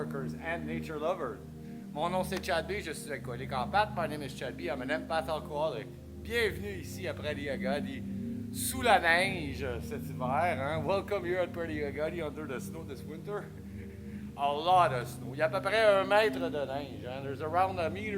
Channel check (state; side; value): identical; both; correlation 1.00